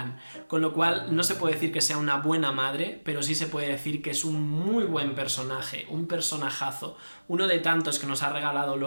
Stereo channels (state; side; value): inverted; both; correlation -1.00